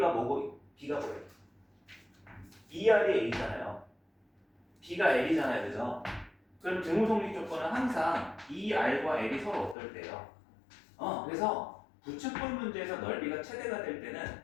뭐고 B가 뭐예요? 2r이 A잖아요. B가 L이잖아요, 그죠? 그럼 등호 성립 조건은 항상 2r과 L이 서로 어떨 때요? 그래서 부채꼴 문제에서 넓이가 최대가 될 때는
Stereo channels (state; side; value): drops out; right; at 9.8 s